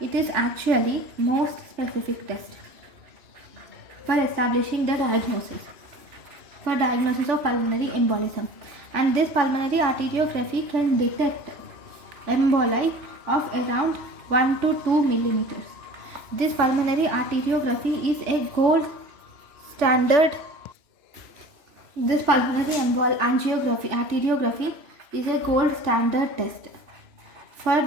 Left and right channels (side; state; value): left; late; 3.0 ms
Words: is actually most specific test for establishing the diagnosis of pulmonary embolism, and this pulmonary arteriography can detect emboli of around 1 to 2 millimeters. This pulmonary arteriography is a gold standard. This pulmonary arteriography is a gold standard test for